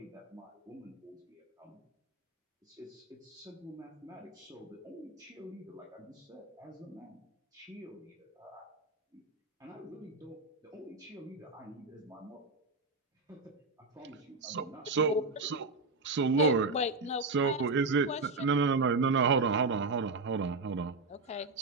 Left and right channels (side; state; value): left; quieter; 3.7 dB